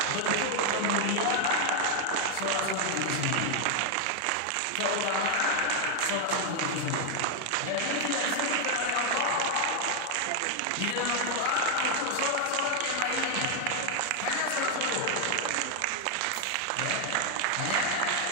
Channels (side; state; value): both; different; correlation 0.00